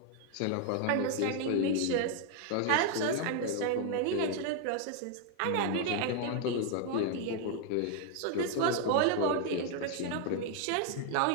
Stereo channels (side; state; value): both; different; correlation 0.00